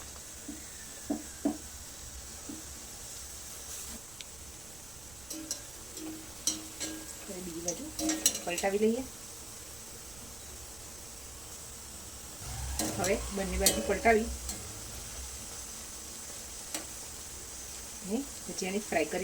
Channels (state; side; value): noise; right; rumble, 17 dB below the sound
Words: બીજી બાજુ પલટાવી લઈએ. હવે બંને બાજુ પલટાવી અને ભજીયાને ફ્રાય